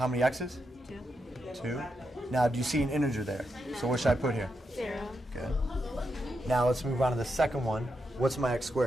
many x's? 2. 2. Now, do you see an integer there? So what should I put here? 0. Good. Now let's move on to the second one. What's my x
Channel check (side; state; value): both; normal; correlation 0.84